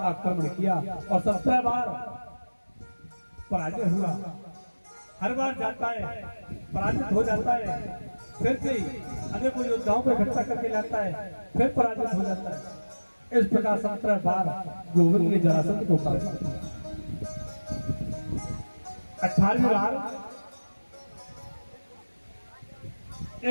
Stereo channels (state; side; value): inverted; both; correlation -1.00